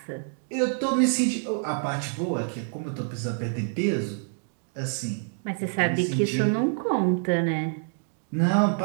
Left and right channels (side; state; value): left; silent; 60 dB below the other